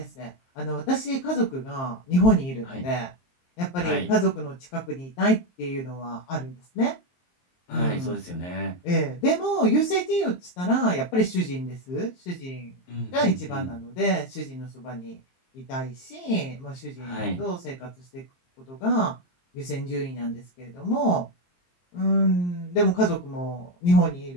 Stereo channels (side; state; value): right; late; 23 ms